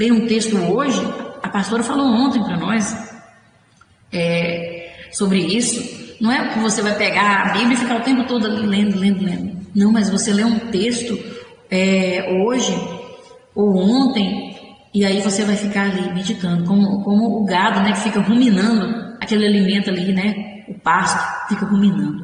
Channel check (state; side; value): identical; both; correlation 1.00